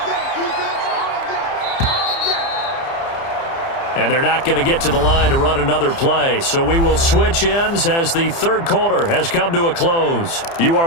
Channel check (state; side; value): late; right; 30 ms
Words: And they're not going to get to the line to run another play. So we will switch ends as the third quarter has come to a close. You